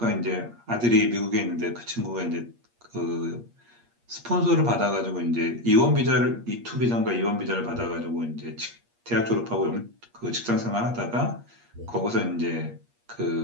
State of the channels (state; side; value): late; left; 8.5 ms